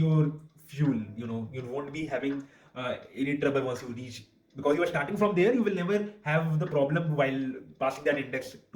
fuel. You won't be having any trouble once you reach, because you are starting from there. You will never have the problem while passing that index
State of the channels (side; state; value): both; identical; correlation 1.00